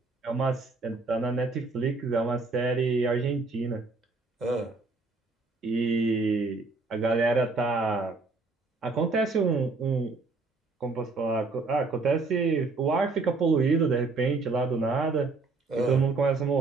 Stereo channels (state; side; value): quieter; left; 3.8 dB